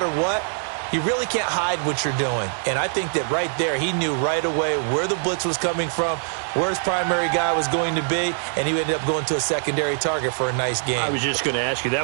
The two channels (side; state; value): left; silent; 63 dB below the other